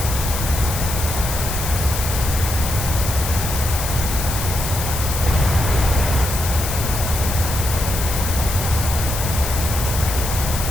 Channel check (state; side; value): noise; left; hiss, 5 dB below the sound